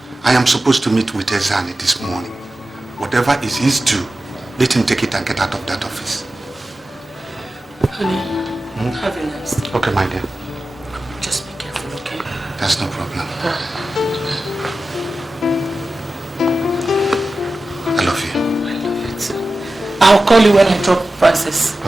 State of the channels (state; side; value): normal; both; correlation 0.94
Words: I am supposed to meet with Ezeoun this morning. Whatever is his due, let him take it and get out of that office. Honey, have a nice day. Okay, my dear. Just be careful, okay? That's no problem. I love you. I love you too. I'll call you when I drop Francis